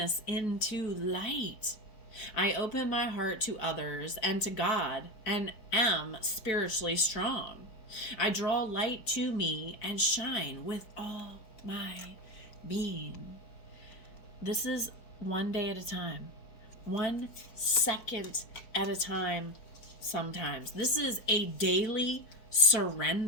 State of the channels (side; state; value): right; late; 4.4 ms